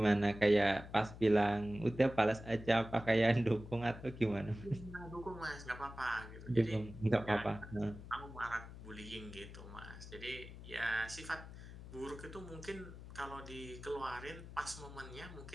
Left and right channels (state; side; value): noise; left; hum, 13 dB below the sound